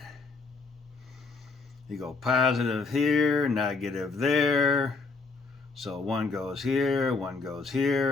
You go positive here, negative there. So one goes here, one goes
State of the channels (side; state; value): right; quieter; 4.2 dB